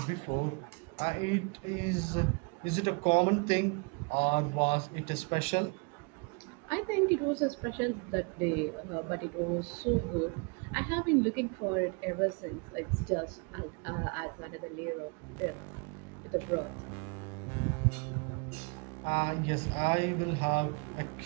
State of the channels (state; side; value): quieter; left; 32.4 dB